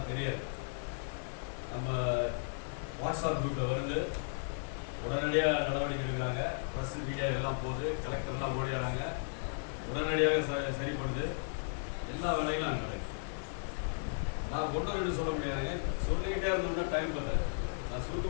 தெரியாது. நம்ம வாட்ஸ்அப் குரூப்பில் வருது, உடனடியாக நடவடிக்கை எடுக்கிறாங்க. ப்ரெஸ் மீடியா எல்லாம் போகுது, கலெக்டர்லாம் ஓடிடுறாங்க, உடனடியாக சரிப்படுது. எல்லா வேலையும் நாங்கள் நடக்குது. நான் ஒன்று ரெண்டு சொல்ல முடியாதுங்க, சொல்லிக்கிட்டே இருந்தோம்னா டைம் பார்த்தாரு. நான்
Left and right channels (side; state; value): right; silent; 54 dB below the other